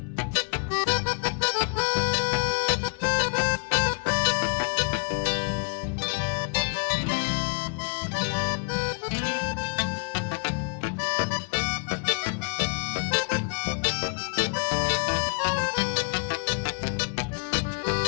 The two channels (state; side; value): quieter; right; 38.1 dB